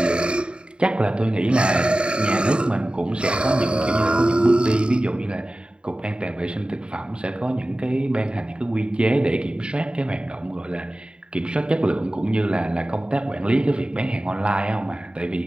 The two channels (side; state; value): left; late; 0.052 ms